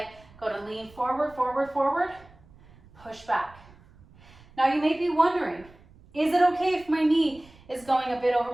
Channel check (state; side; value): noise; right; rumble, 25 dB below the sound